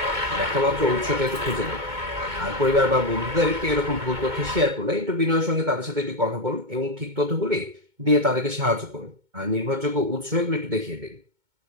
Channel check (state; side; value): late; left; 2.2 ms